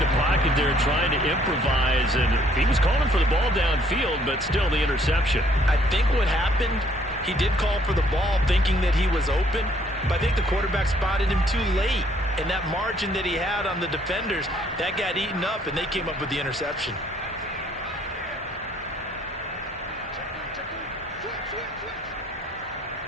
pocket there trying to improvise, and he was calling for the ball downfield, but still the interception. I think what happened, he did call for the ball thinking that he was open, but I think the quarterback spotted him too late. And that margin that he had on the defenders, that got eaten up, and they came up with the interception.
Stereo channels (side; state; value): both; normal; correlation 0.64